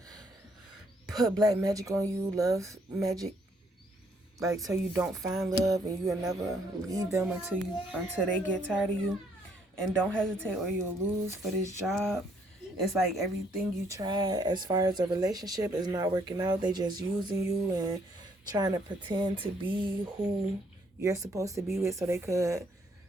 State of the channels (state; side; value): normal; both; correlation 0.68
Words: put black magic on you, love magic, like so you don't find love and you'll never leave them until they get tired of you. And don't hesitate or you'll lose for this job. It's like everything you try as far as a relationship is not working out. They just using you and trying to pretend to be who you're supposed to be with so they could.